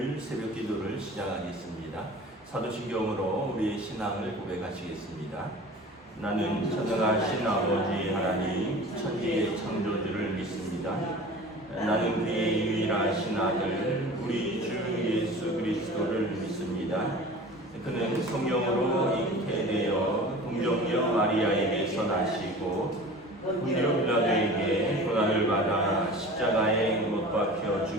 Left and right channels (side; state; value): both; normal; correlation 0.39